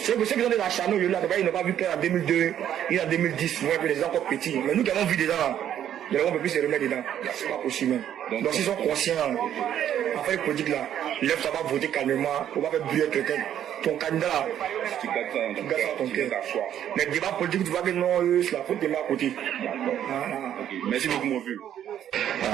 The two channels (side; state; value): left; quieter; 10.4 dB